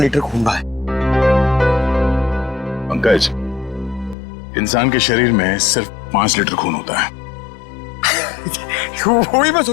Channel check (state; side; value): drops out; right; at 4.2 s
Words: खून बहा है। पंकज, इंसान के शरीर में सिर्फ 5 लीटर खून होता है। वही मैं